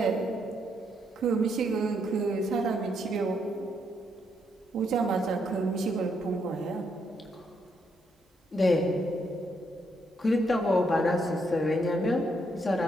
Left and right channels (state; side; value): normal; both; correlation 0.76